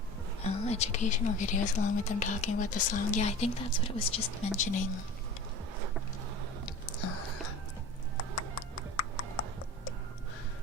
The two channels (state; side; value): normal; both; correlation 0.38